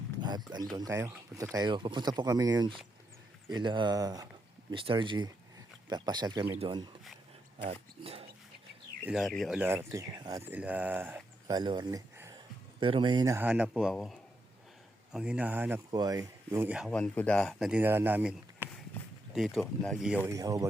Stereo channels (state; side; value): normal; both; correlation 0.82